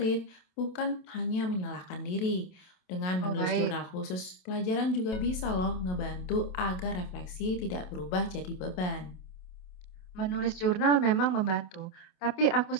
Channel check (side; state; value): right; late; 27 ms